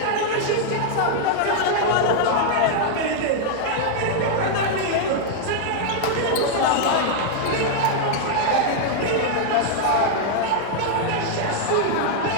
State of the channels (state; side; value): different; both; correlation -0.01